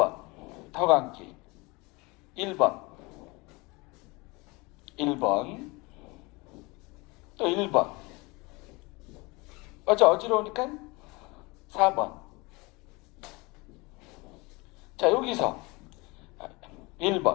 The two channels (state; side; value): quieter; right; 25.3 dB